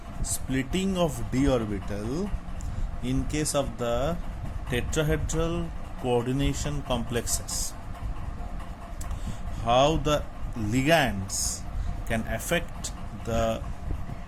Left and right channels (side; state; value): both; identical; correlation 1.00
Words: splitting of d orbital in case of the tetrahedral coordination complexes, how the ligands can affect the